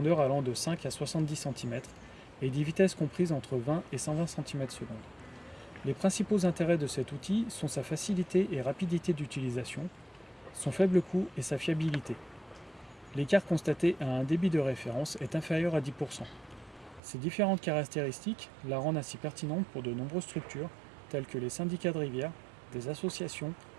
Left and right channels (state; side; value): drops out; left; at 17.0 s